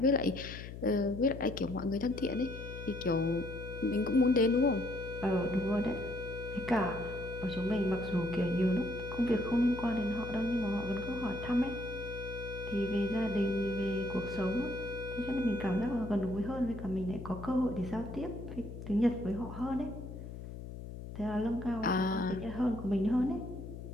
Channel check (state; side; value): noise; left; hum, 10 dB below the sound